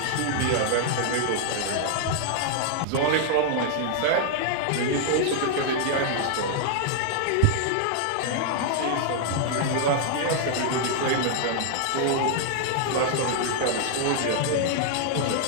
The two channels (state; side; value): different; both; correlation -0.01